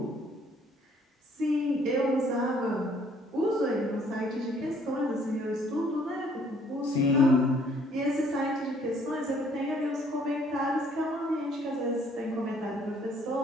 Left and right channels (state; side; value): normal; both; correlation 0.62